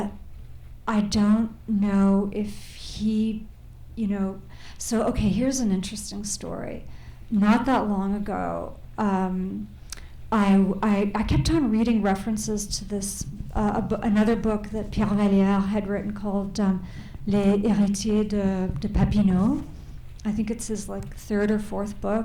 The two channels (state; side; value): identical; both; correlation 1.00